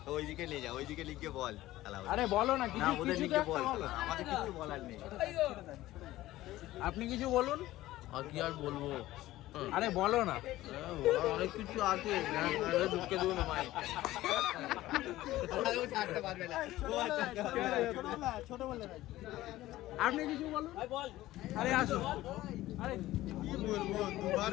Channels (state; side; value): quieter; right; 16.0 dB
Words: ওইদিকে নিয়ে যা, ওইদিকে লিখে বল। আরে বলো না, কিছু ওদের কিছু তো লিখে একটা বল, বলো। আমাদের কিছু বলার নেই। আপনি কিছু বলুন। আর কি আর বলবো, আরে বলো না। অনেক কিছু আছে, ঢুকে দেবো না ভাই। আপনি কিছু বলুন। আরে আসো। আরে কি বলবো, দুবার